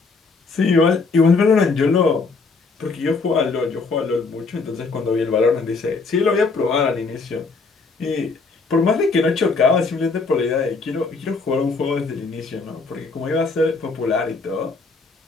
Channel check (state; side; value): quieter; right; 4.2 dB